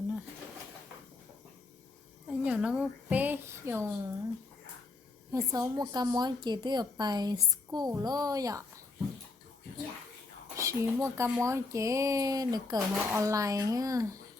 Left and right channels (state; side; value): quieter; right; 3.5 dB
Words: anh nhỏ nó một bé dùng hay số một cái món chỉ từ ở bài school lo vậy chỉ một cái món chỉ được cỡ họ online ha